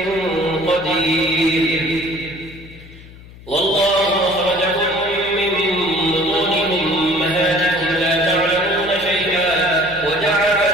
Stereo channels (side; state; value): left; noise; hum, 19 dB below the sound